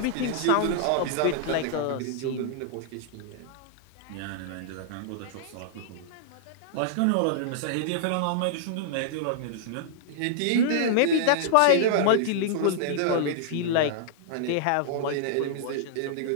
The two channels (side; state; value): both; different; correlation -0.01